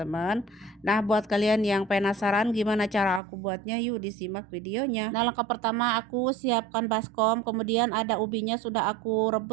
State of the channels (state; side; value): drops out; left; at 3.2 s